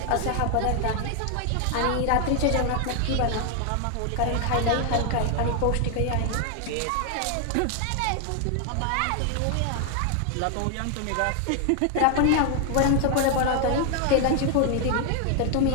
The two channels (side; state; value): both; different; correlation 0.00